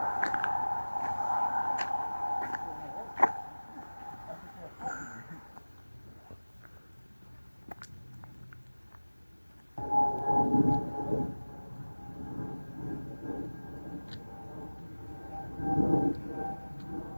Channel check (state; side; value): inverted; both; correlation -1.00